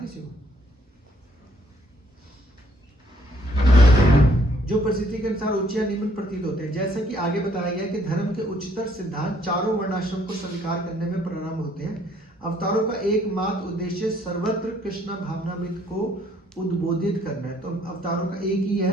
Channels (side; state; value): both; normal; correlation 0.65